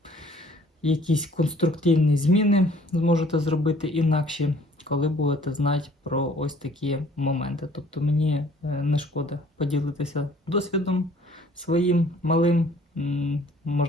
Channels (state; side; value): normal; both; correlation 0.56